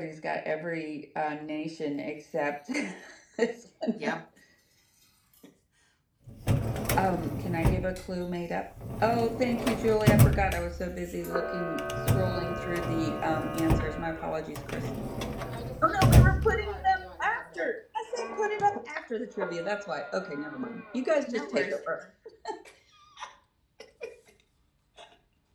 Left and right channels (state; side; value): identical; both; correlation 1.00